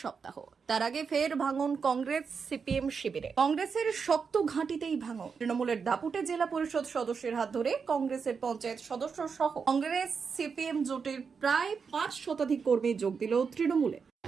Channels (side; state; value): left; quieter; 5.7 dB